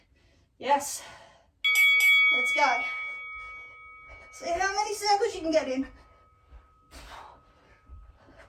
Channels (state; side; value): identical; both; correlation 1.00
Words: Yes. Let's go. See how many circles you can get in.